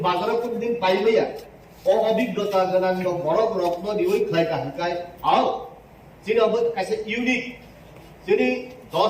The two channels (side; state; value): both; identical; correlation 1.00